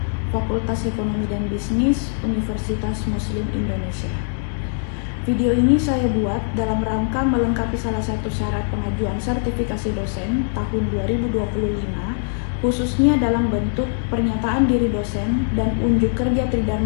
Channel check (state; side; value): silent; right; digital silence